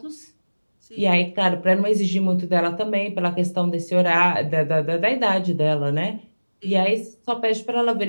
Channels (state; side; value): inverted; both; correlation -1.00